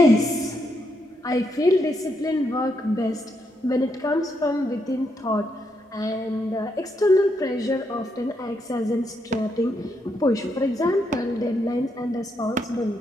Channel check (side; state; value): both; normal; correlation 0.79